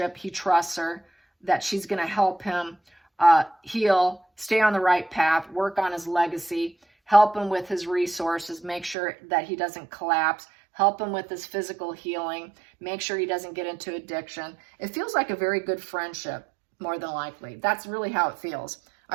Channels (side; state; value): left; drops out; at 9.0 s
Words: He trusts her, that she's going to help him heal, stay on the right path, work on his legacy, help him with his resources, make sure that he doesn't collapse, help him with his physical healing, make sure he doesn't get into addiction. It feels like a very good friendship, more than likely. That's really how it feels.